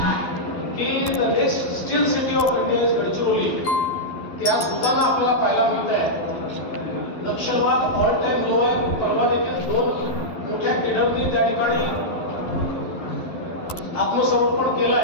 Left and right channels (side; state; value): right; late; 12 ms